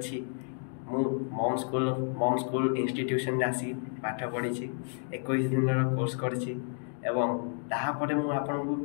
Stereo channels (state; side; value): silent; right; 57 dB below the other